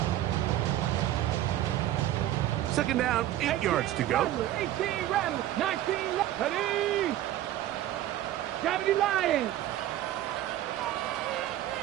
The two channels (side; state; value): left; quieter; 13.4 dB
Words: 8. 2nd down, 8 yards to go. 18 Rattlers, 19 left. Ready. Gravity Lions.